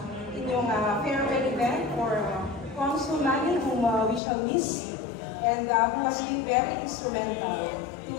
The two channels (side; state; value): right; drops out; at 4.2 s